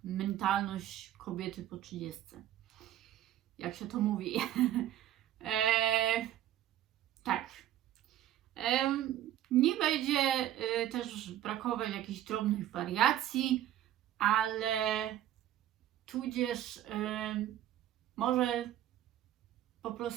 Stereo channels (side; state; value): left; quieter; 12.4 dB